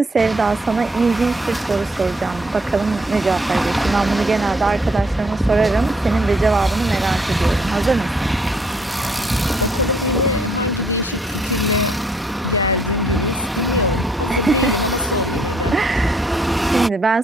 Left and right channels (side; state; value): both; normal; correlation 0.66